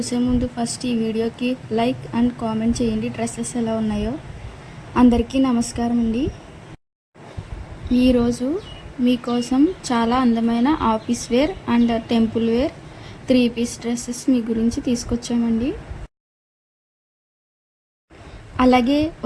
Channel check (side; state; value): both; identical; correlation 1.00